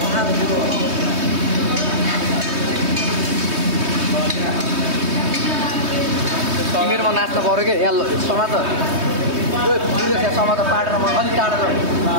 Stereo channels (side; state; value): left; late; 3.2 ms